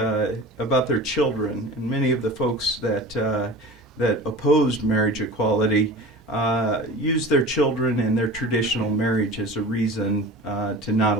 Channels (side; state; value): both; normal; correlation 0.36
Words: children, and many of the folks that opposed marriage equality used their children and their traditional marriage as a reason to not